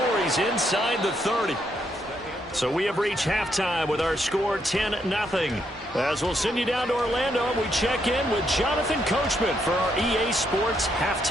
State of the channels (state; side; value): normal; both; correlation 0.76